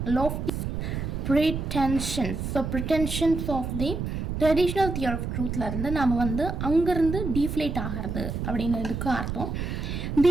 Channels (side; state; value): right; noise; rumble, 4 dB below the sound